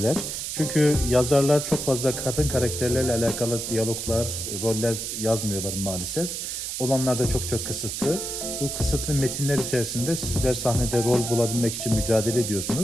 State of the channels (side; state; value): right; noise; hiss, 4 dB below the sound